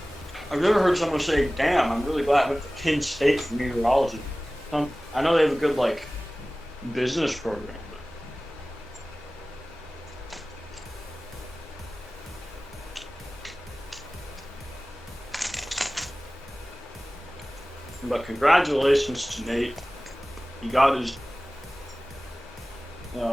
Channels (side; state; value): both; normal; correlation 0.98